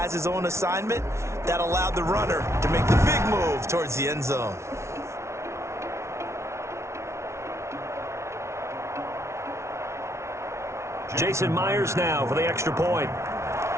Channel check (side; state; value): left; late; 0.13 ms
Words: his own assignment. That allowed the runner to make the big move towards the end zone. Jason Myers now for the extra point.